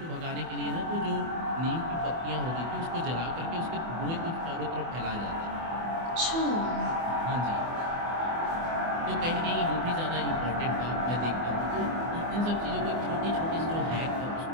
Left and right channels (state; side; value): late; left; 24 ms